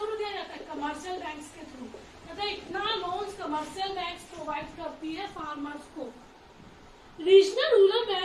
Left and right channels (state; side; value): identical; both; correlation 1.00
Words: दिया जाता है कमर्शियल बैंक्स के थ्रू। मतलब इतना लोन्स कमर्शियल बैंक्स प्रोवाइड करती है फार्मर्स को। Regional rural